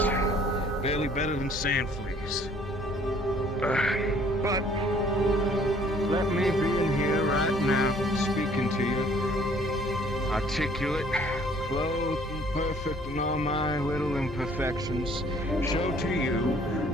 barely better than sand fleas. But let me be in here right now, speaking to you, articulate, clothed and perfect in all my little imperfections, show to you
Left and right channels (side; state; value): both; normal; correlation 0.58